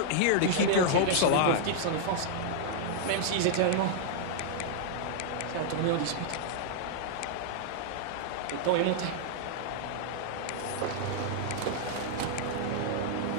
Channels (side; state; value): both; different; correlation -0.01